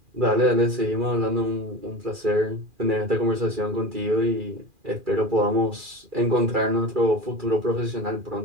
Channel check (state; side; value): late; left; 2.4 ms